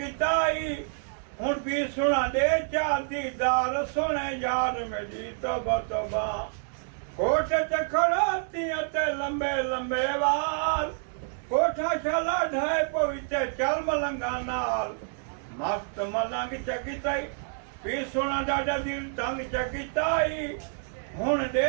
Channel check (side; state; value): left; silent; 59 dB below the other